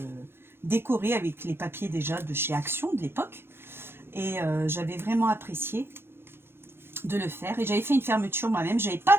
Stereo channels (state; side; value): late; left; 0.11 ms